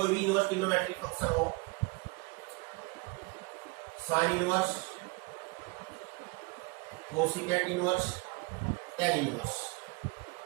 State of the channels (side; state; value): left; quieter; 27.2 dB